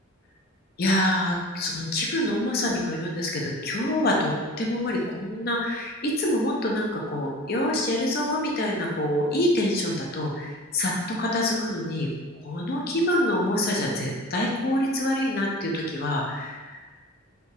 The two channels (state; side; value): normal; both; correlation 0.39